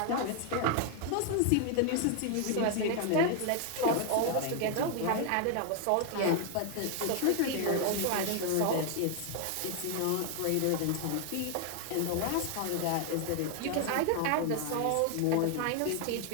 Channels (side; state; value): both; different; correlation 0.00